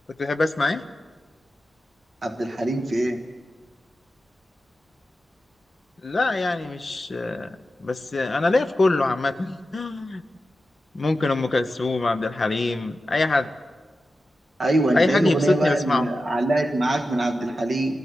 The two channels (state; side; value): normal; both; correlation 0.92